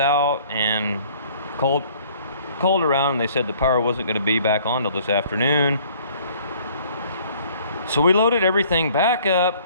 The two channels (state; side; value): inverted; both; correlation -0.56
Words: and called around and they said the power wasn't gonna be back on till this afternoon. So we loaded everything back up